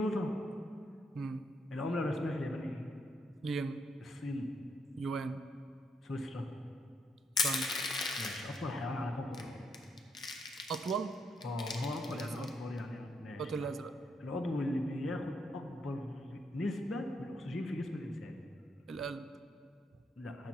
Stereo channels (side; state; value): both; normal; correlation 0.77